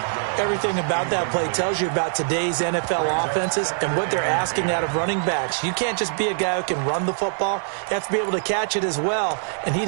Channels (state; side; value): silent; left; 63 dB below the other